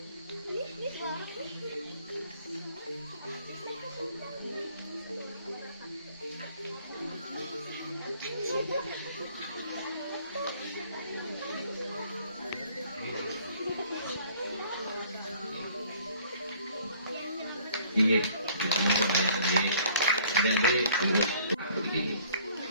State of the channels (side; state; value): both; inverted; correlation -0.56